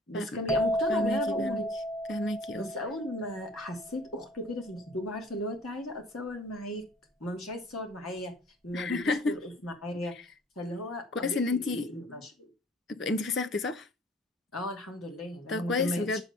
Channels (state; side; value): normal; both; correlation 0.52